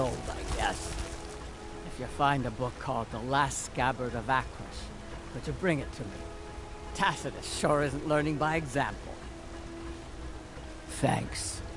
I guess. If you find a book called The Last Scabbard of Akrish, could you bring it to me? Tacitus sure isn't learning by example. Thanks.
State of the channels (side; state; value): both; identical; correlation 1.00